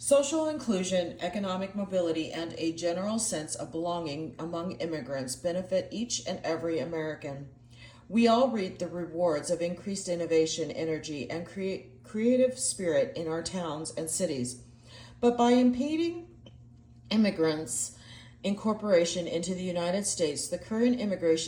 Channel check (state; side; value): identical; both; correlation 1.00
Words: inclusion, economic mobility, and a general sense of belonging among immigrants benefit each and every American. We all reap the rewards of increased innovation, energy, and creative spirit in our towns and cities. But by impeding immigrants' incorporation into the United States, the current